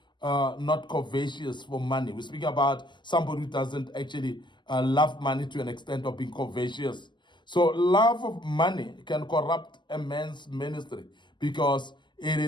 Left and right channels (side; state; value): right; late; 0.22 ms